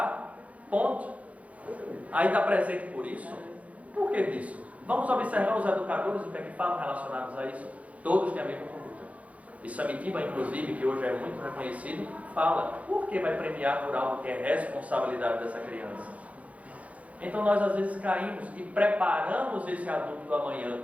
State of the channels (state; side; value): late; left; 0.067 ms